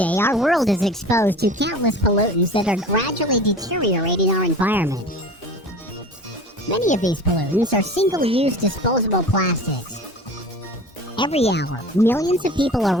our world is exposed to countless pollutants that are gradually deteriorating our environment. Many of these pollutants are single-use disposable plastics. Every hour, millions of people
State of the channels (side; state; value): both; normal; correlation 0.38